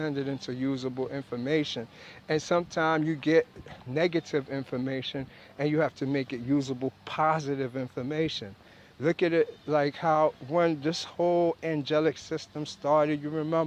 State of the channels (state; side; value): identical; both; correlation 1.00